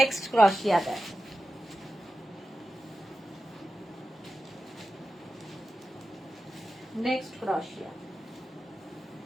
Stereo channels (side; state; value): both; normal; correlation 0.92